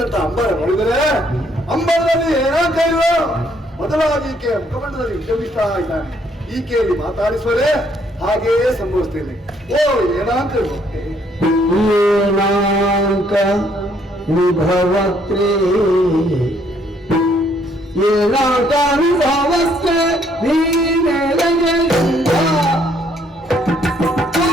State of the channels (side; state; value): both; normal; correlation 0.67